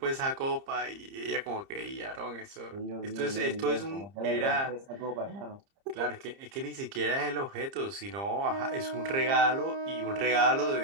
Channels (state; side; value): late; left; 30 ms